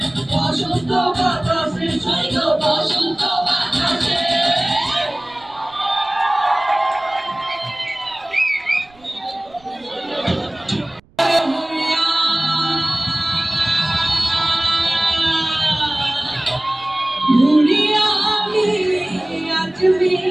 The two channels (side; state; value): right; noise; rumble, 29 dB below the sound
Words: বসন্ত বাতাসে সৈব বসন্ত বাতাসে भूलिया